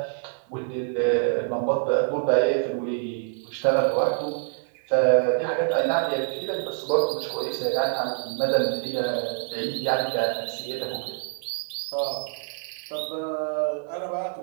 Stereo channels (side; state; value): left; silent; 61 dB below the other